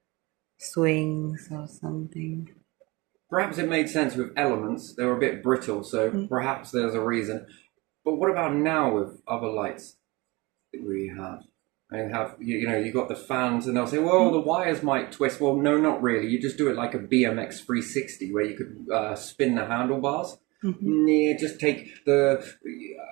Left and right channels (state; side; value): quieter; left; 24.0 dB